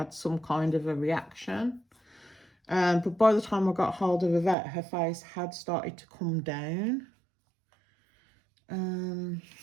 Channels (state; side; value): drops out; left; at 4.5 s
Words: some kind of a reaction. But by the time I got hold of the vet, her face had started to come down.